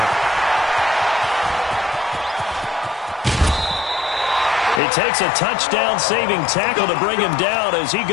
It takes a touchdown-saving tackle to bring him down as he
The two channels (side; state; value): right; drops out; at 4.8 s